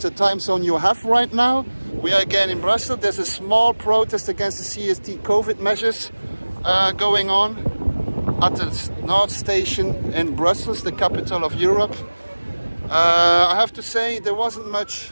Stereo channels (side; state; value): both; inverted; correlation -1.00